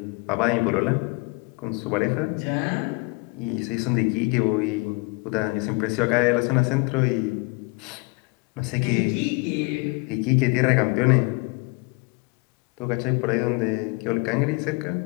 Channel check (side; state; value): right; quieter; 27.4 dB